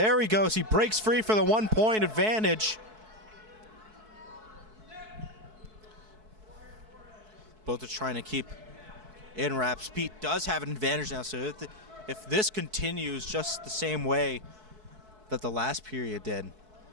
he goes. He breaks free for the 1 point advantage. Both are trying to keep in wraps. Pete does have an advantage now, so if this continues just the same way that the last period did,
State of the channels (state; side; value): late; left; 4.6 ms